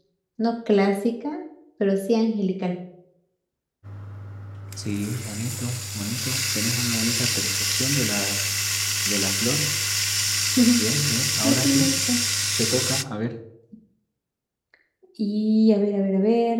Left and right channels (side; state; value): both; identical; correlation 1.00